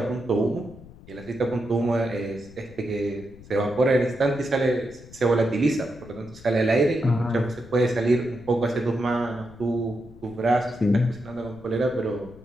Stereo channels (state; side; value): noise; left; rumble, 20 dB below the sound